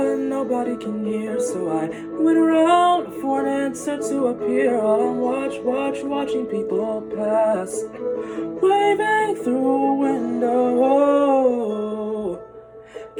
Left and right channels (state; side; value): identical; both; correlation 1.00